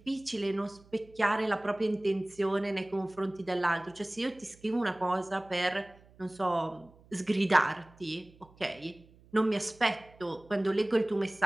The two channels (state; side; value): noise; right; hum, 26 dB below the sound